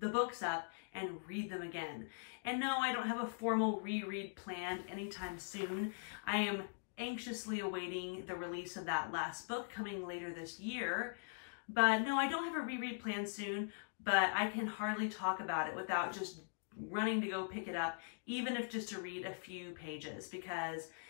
the books up and read them again. And no, I don't have a formal reread planned anytime soon. I am anxiously awaiting the release of that last book coming later this year. But no, I don't have a reread planned soon, but I can hardly talk about it without just running to go pick it up, even if just to read a few pages, because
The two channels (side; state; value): right; silent; digital silence